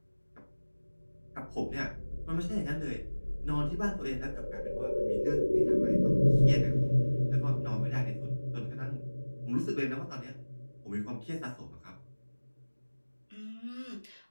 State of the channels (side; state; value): both; inverted; correlation -1.00